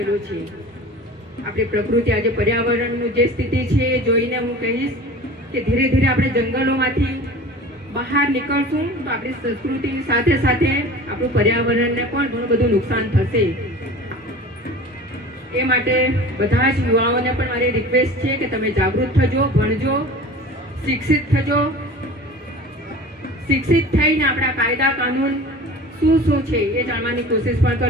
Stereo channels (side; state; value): both; normal; correlation 0.39